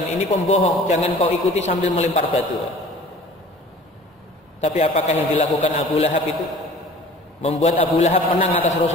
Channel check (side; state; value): both; normal; correlation 0.46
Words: ini pembohong, jangan kau ikuti sambil melempar batu. Tapi apakah yang dilakukan Abu Lahab itu membuat Abu Lahab menang atas